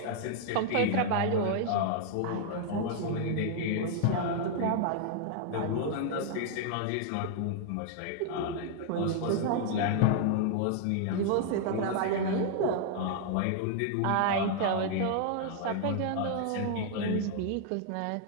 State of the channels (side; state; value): both; different; correlation 0.00